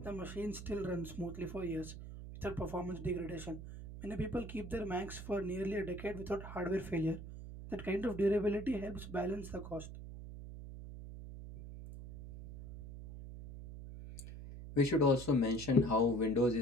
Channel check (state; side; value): noise; right; hum, 11 dB below the sound